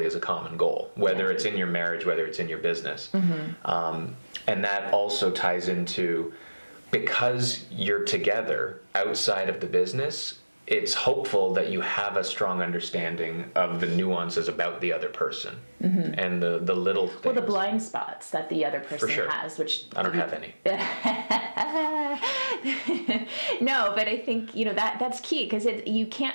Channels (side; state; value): both; inverted; correlation -1.00